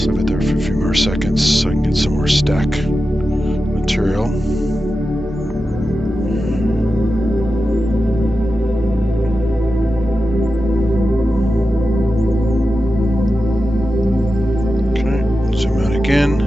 leave it there for a few more seconds so I can get some more stack material. Okay, zoom out again.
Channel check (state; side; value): normal; both; correlation 0.91